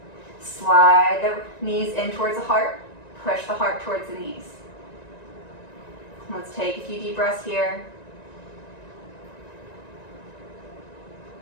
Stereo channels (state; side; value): late; right; 1.9 ms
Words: Slide the knees in towards the heart. Push the heart towards the knees. Let's take a few deep breaths here.